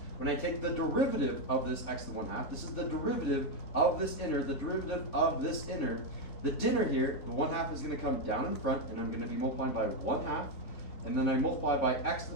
When I take the derivative of this x to the 1/2, this is the derivative of this inner, the derivative of this inner. The dinner here, the 1/2 is going to come down in front, and I'm going to be multiplying by 1/2, and then I multiply by x to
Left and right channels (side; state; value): right; late; 3.9 ms